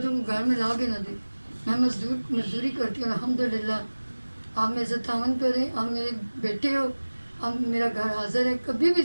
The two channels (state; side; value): inverted; both; correlation -1.00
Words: کو گھر میں لا کے نہ دے۔ میں مزدوری کرتی ہوں الحمدللہ، آپ میرے سے تعاون کریں، آپ میرے بیٹے ہو، اب میرا گھر حاضر ہے، کبھی بھی